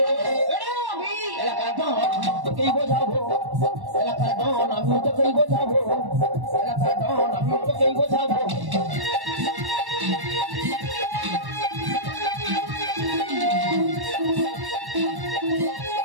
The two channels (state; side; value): late; left; 1.1 ms